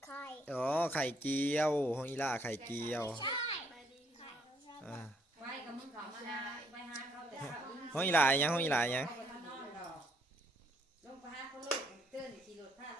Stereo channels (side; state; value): both; normal; correlation 0.69